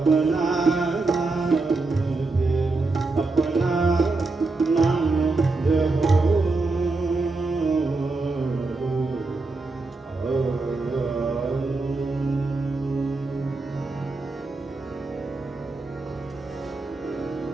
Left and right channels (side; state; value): left; quieter; 3.5 dB